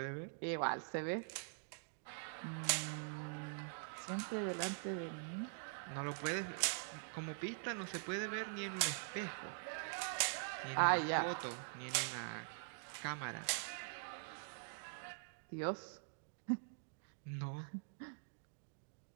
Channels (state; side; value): silent; left; digital silence